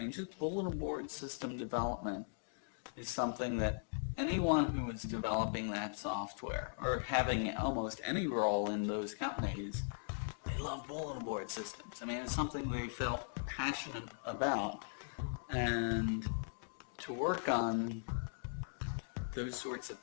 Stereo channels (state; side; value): silent; right; digital silence